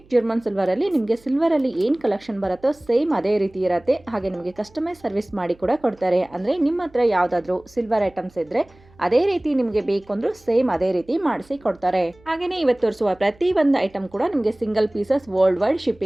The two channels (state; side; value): noise; right; hum, 28 dB below the sound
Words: ಜರ್ಮನ್ ಸಿಲ್ವರಲ್ಲಿ ನಿಮಗೆ ಸಿಲ್ವರಲ್ಲಿ ಏನು ಕಲೆಕ್ಷನ್ ಬರುತ್ತೋ ಸೇಮ್ ಅದೇ ರೀತಿ ಇರುತ್ತೆ. ಹಾಗೆ ನಿಮಗೆ ಕಸ್ಟಮೈಸ್ ಸರ್ವಿಸ್ ಮಾಡಿ ಕೂಡ ಕೊಡ್ತಾರೆ. ಅಂದರೆ ನಿಮ್ಮ ಹತ್ರ ಯಾವುದಾದ್ರೂ ಸಿಲ್ವರ್ ಐಟಮ್ಸ್ ಇದ್ದರೆ ಅದೇ ರೀತಿ ನಿಮಗೆ ಬೇಕು ಅಂದರೂ ಸೇಮ್ ಅದೇ ರೀತಿ ಮಾಡಿಸಿ ಕೊಡ್ತಾರೆ. ಹಾಗೆಯೇ ಇವತ್ತು ತೋರಿಸುವ ಪ್ರತಿ ಒಂದು ಐಟಮ್ ಕೂಡ ನಿಮಗೆ single pieces world wide